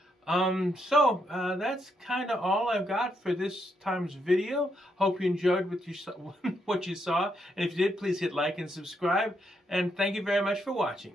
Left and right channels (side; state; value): both; normal; correlation 0.78